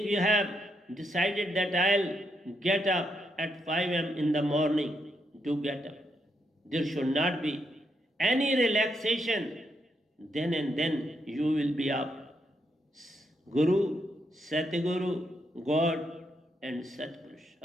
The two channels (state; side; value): normal; both; correlation 0.79